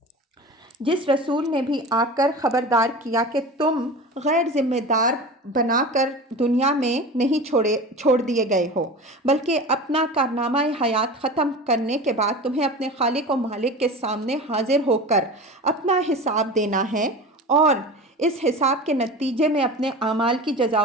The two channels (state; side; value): normal; both; correlation 0.32